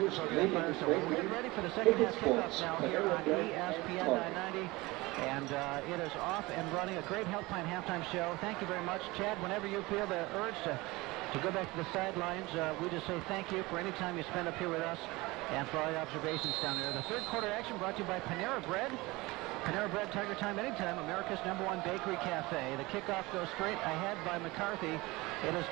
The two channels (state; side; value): quieter; left; 21.9 dB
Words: program at Firestone. Well, we're getting ready for the second half kickoff now here on ESPN 990, and it is off and running. A great Health Plan halftime show. Thank you very much, Chad. Whenever you feel the urge to go back to the sidelines, we just say thank you for any time you spend up here with us and for all your observations down there. The third quarter action brought to you by Panera Bread. Panera Bread, Tiger Time, anytime, America's #1 bakery cafe. The kickoff goes straight ahead by McCarthy. It is